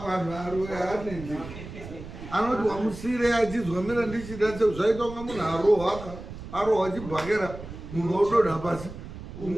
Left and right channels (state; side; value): noise; right; rumble, 12 dB below the sound